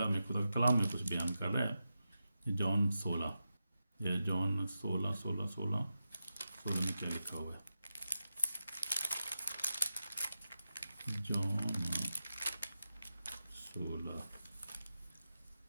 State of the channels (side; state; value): both; inverted; correlation -0.90